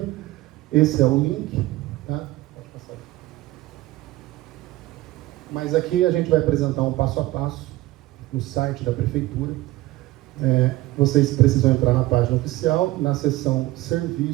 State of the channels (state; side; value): quieter; left; 17.7 dB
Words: Esse é o link, tá? Pode passar. Mas aqui a gente vai apresentar um passo a passo no site da Prefeitura. Vocês precisam entrar na página oficial, na seção